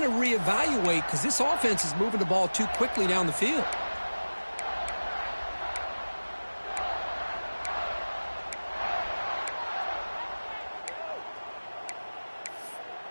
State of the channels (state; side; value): inverted; both; correlation -1.00